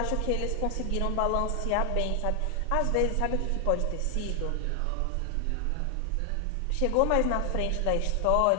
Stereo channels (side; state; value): both; different; correlation 0.00